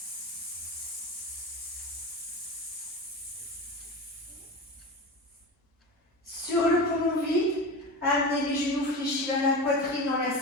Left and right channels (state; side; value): normal; both; correlation 0.27